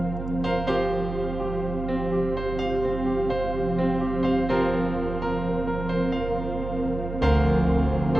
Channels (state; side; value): noise; right; hum, 7 dB below the sound